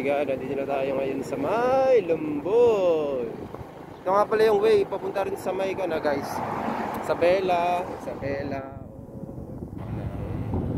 god, nandito na tayo ngayon sa may Lumboy. Ito nga pala yung way, papunta rin sa may na guys. Isabela.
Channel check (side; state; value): both; identical; correlation 1.00